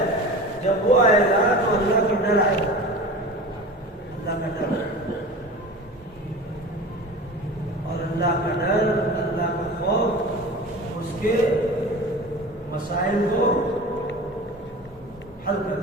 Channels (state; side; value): normal; both; correlation 0.35